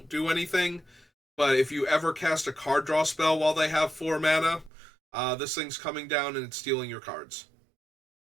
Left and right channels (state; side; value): drops out; left; at 4.7 s